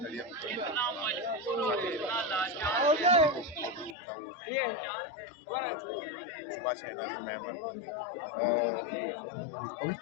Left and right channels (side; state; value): right; drops out; at 4.0 s